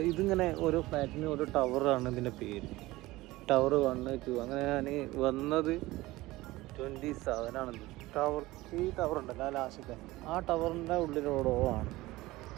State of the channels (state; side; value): quieter; left; 19.0 dB